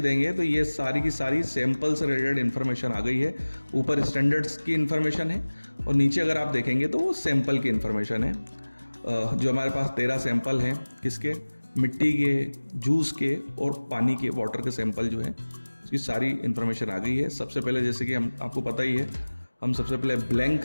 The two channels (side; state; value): both; inverted; correlation -1.00